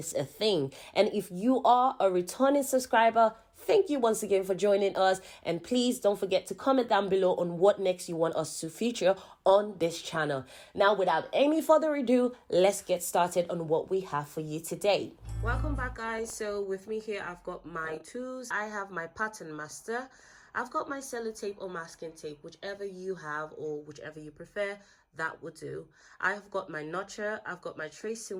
a thing. And if you are a returning subscriber, thank you once again for joining us, and please don't forget to comment down below on what next you want us to feature on this channel. Now, without any further ado, let's get started on what we have for you today. Welcome back, guys. So with me here, I've got my tools. I have my pattern master. I've got my sellotape or masking tape, whichever you have or whichever you prefer, that would do. I've got my notcher, I've got my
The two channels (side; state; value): both; identical; correlation 1.00